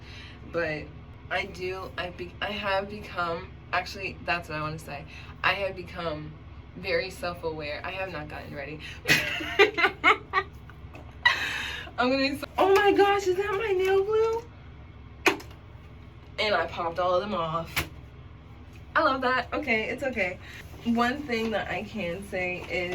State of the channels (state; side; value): identical; both; correlation 1.00